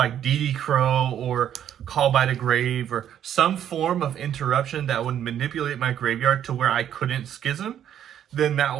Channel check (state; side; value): quieter; left; 10.1 dB